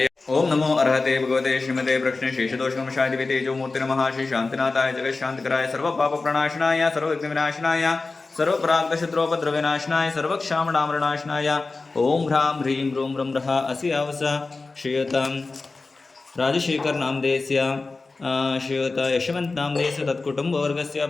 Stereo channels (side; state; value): right; quieter; 3.7 dB